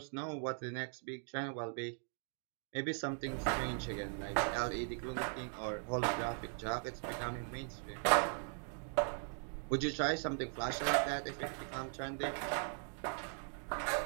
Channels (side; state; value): left; silent; 51 dB below the other